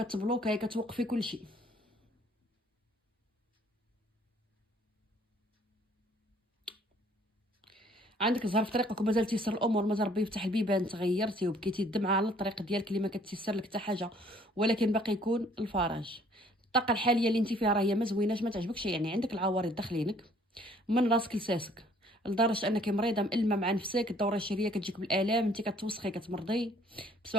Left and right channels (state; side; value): normal; both; correlation 0.59